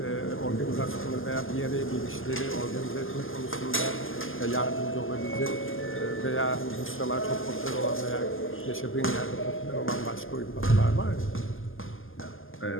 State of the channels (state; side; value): late; right; 0.59 ms